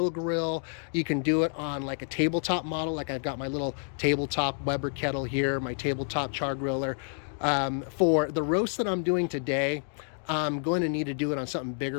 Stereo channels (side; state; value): right; silent; 59 dB below the other